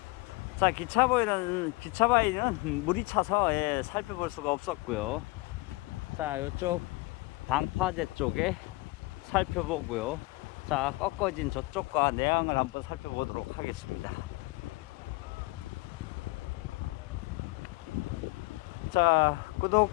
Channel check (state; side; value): quieter; right; 24.0 dB